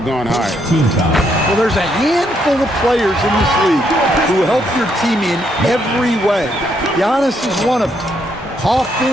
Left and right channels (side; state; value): both; normal; correlation 0.75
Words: gone higher. Well, there's a handful of players in this league who help your team in every way. Giannis is one of them.